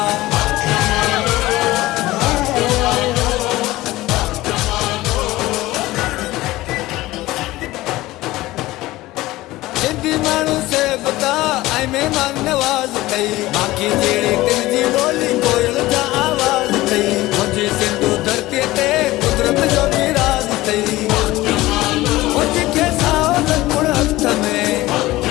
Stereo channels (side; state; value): right; quieter; 17.9 dB